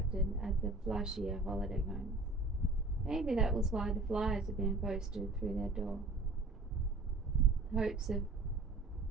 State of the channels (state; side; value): quieter; left; 3.1 dB